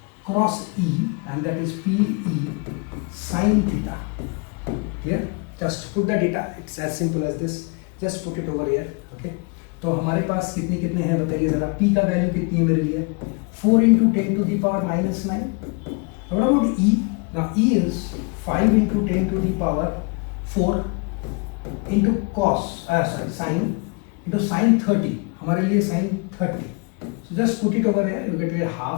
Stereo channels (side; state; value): right; quieter; 32.5 dB